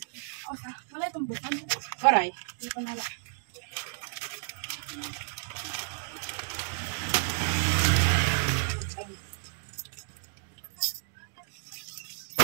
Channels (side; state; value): left; silent; digital silence